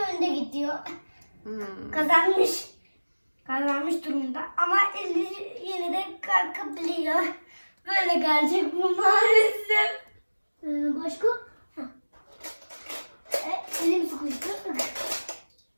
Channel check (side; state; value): both; inverted; correlation -1.00